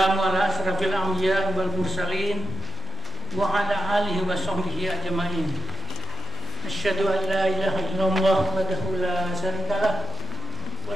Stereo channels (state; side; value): noise; right; hum, 19 dB below the sound